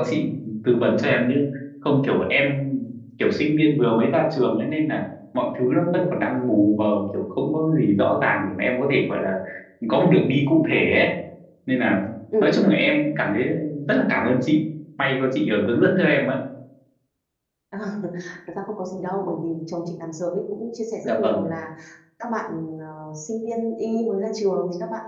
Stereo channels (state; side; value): identical; both; correlation 1.00